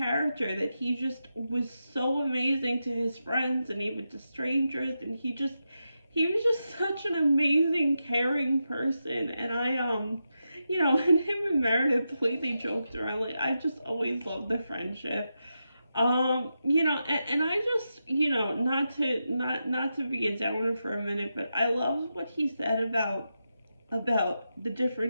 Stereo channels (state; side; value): inverted; both; correlation -0.88